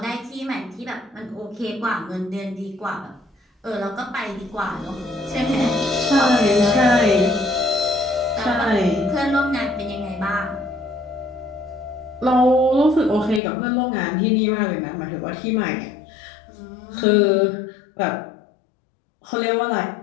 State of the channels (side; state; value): right; drops out; at 13.4 s